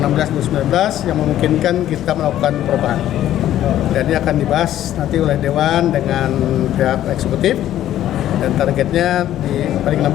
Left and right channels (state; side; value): quieter; right; 12.4 dB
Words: yang memungkinkan kita melakukan perubahan. Dan ini akan dibahas nanti oleh Dewan dengan pihak eksekutif dan targetnya paling